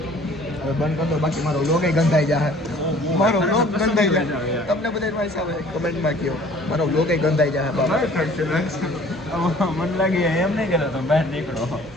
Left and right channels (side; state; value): both; normal; correlation 0.52